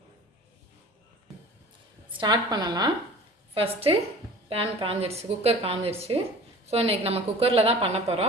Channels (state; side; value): normal; both; correlation 0.42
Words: ஃபஸ்ட்டு பேன் காஞ்சிருச்சு, குக்கர் காஞ்சிருச்சு. ஸோ இன்றைக்கி நம்ம குக்கரில் தான் பண்ண